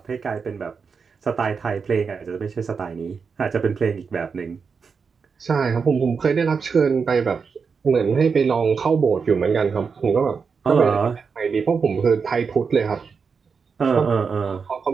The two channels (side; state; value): left; quieter; 5.6 dB